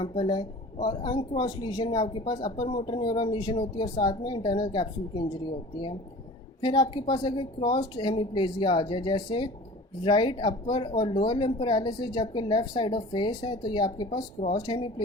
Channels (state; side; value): normal; both; correlation 0.41